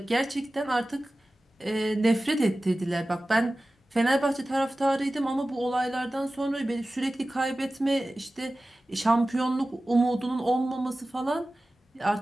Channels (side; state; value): both; normal; correlation 0.96